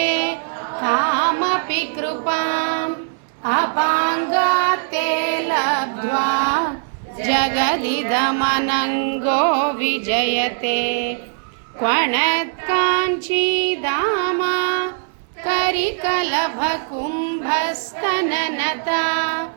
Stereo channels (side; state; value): left; silent; 66 dB below the other